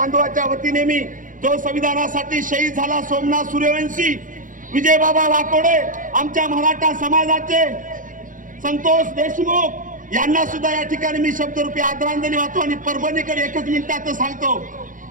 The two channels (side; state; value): left; late; 0.38 ms